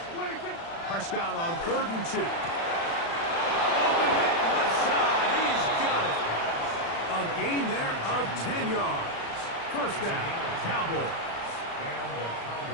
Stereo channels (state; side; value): late; right; 36 ms